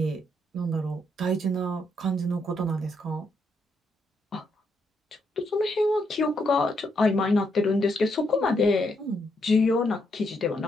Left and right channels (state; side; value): normal; both; correlation 0.77